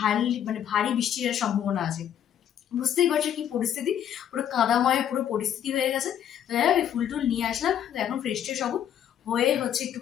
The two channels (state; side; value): quieter; right; 9.8 dB